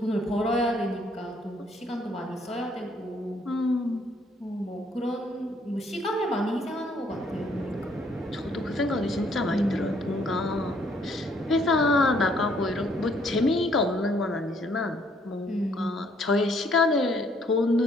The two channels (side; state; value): both; normal; correlation 0.66